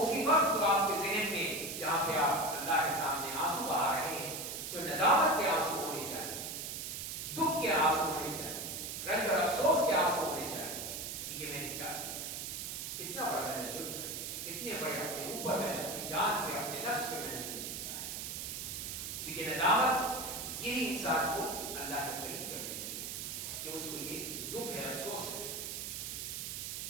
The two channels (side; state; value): right; noise; hiss, 5 dB below the sound